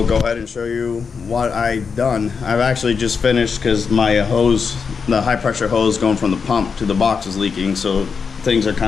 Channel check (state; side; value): quieter; right; 5.6 dB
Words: go ahead and show you what I've done. I've actually just finished because my hose, the high pressure hose going from the pump to the box is leaking, so things are